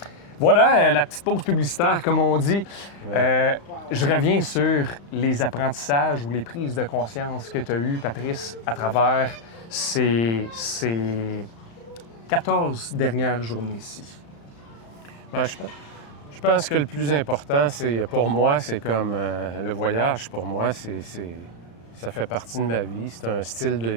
Voilà la petite pause publicitaire, comme on dit. Ouais. Je reviens sur les apprentissages ou les prises de conscience que tu as eues, Patrice, à travers ces 14 dernières journées ici. Ben, je pense que le plus important, c'est pour moi, c'est comme le voyage. Pour moi, ça fait partie de ma vie. C'est un style de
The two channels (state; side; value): late; right; 35 ms